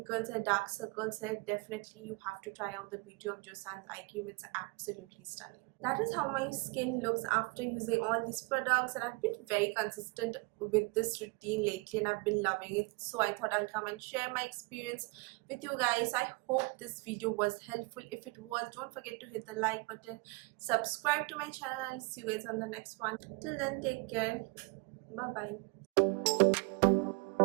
है, dark circles है, definitely you have to try out the Beauty of Joseon's eye cream. It's absolutely stunning. That is how my skin looks after using all these products, and I've been very consistent with this routine lately and I've been loving it. So I thought I'll come and share my experience with you guys. I hope this video was helpful. If it was, don't forget to hit the like button, subscribe to my channel, and see you guys on the next one. Till then, take care. Bye bye.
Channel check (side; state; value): left; quieter; 27.8 dB